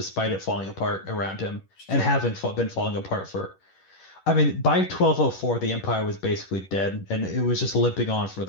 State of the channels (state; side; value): late; right; 11 ms